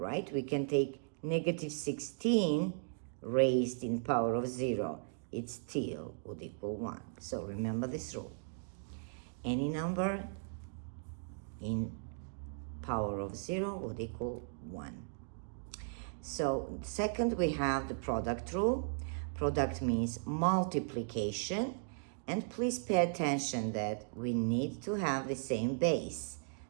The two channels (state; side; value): silent; left; digital silence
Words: We can take negative 16 raised in power of 0, it still would equal 1. So remember this rule. Any number in power of 0 would equal 1. So second, we have the product rule. Product means multiplication. And please pay attention that we need to have the same base.